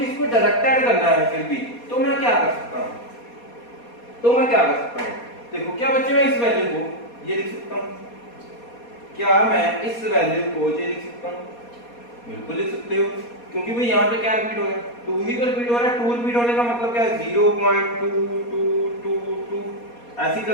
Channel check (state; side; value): late; right; 4.2 ms